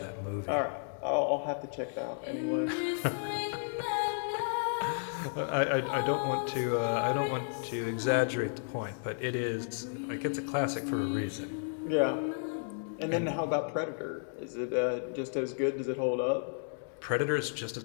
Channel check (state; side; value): silent; right; digital silence